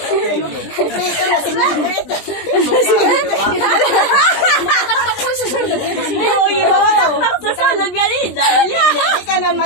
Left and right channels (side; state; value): right; late; 20 ms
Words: Dito na si Margaret. Susunod yan rin. Hindi ka na